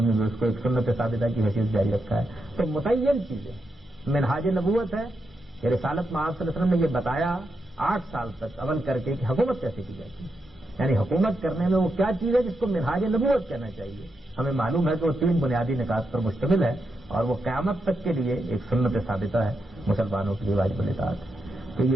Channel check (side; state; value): both; normal; correlation 0.84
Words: نے بھی اس کو ایک سنت ثابتہ کی حیثیت جاری رکھا ہے. تو متعین چیزیں منہاج نبوت ہے کہ رسالت میں آپ صلی اللہ علیہ وسلم نے یہ بتایا 8 سال تک عمل کر کے کہ حکومت کیسے کی جاتی ہے، یعنی حکومت کرنے میں وہ کیا چیز ہے جس کو منہاج نبوت کہنا چاہیے. ہمیں معلوم ہے کہ وہ 3 بنیادی نکات پر مشتمل ہے اور وہ قیامت تک کے لیے ایک سنت ثابتہ ہے، مسلمانوں کے لیے واجب الاطاعت ہے. تو